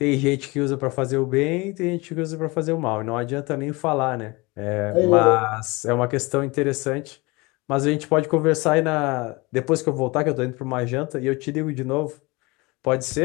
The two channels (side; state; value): right; quieter; 24.7 dB